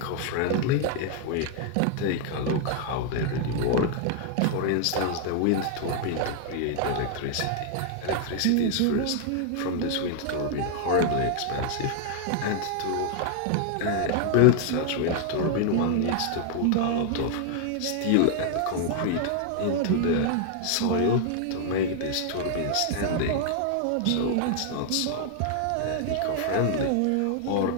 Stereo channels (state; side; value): different; both; correlation 0.00